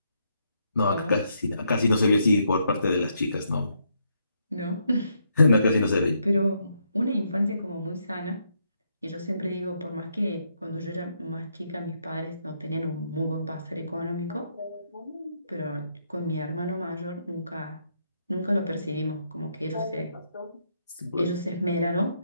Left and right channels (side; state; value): both; inverted; correlation -0.76